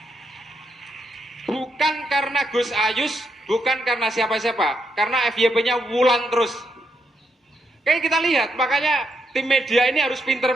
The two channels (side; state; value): both; normal; correlation 0.80